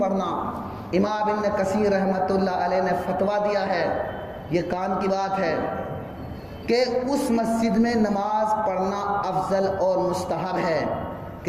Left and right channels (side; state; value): both; identical; correlation 1.00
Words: پڑھنا. امام ابن کثیر رحمۃ اللہ علیہ نے فتویٰ دیا ہے، یہ کان کی بات ہے، کہ اس مسجد میں نماز پڑھنا افضل اور مستحب ہے